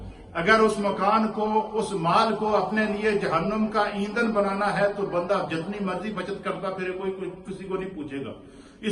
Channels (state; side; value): identical; both; correlation 1.00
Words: अगर उस मकान को, उस माल को अपने लिए जहन्नुम का ईंधन बनाना है तो बंदा जितनी मर्जी बचत करता फिर कोई किसी को नहीं पूछेगा।